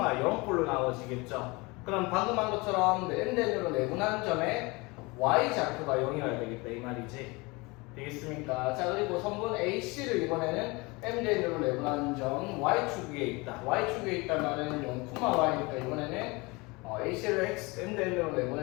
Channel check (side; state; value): right; quieter; 25.4 dB